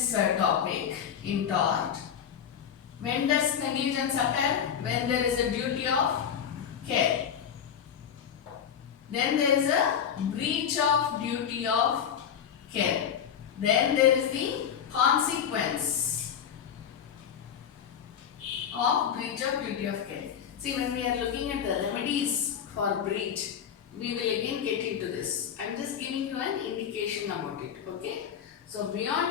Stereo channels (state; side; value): quieter; right; 8.4 dB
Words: topic in tort, when does negligence occur? When there is a duty of care. Then there is a breach of duty of care. Then there is the consequence of breach of duty of care. See, when we are looking at the remedies for breach, we will again get into this. I am just giving you an indication about it. Okay. So,